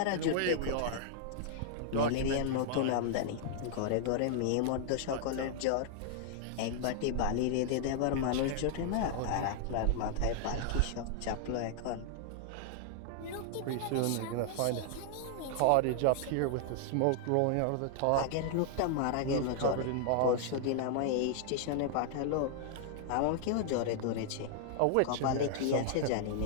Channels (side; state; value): both; different; correlation -0.01